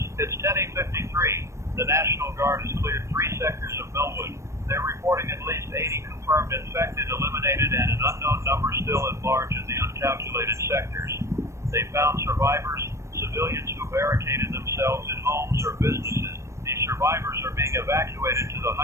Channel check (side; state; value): left; late; 0.14 ms